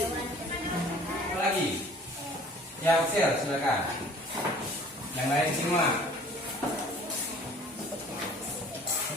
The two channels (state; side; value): normal; both; correlation 0.51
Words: Apa lagi? Ya, Axel, silakan. Yang lain simak.